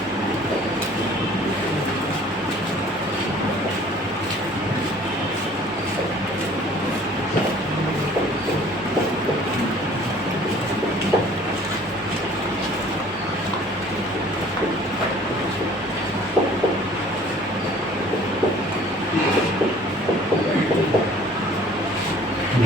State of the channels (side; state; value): both; normal; correlation 0.52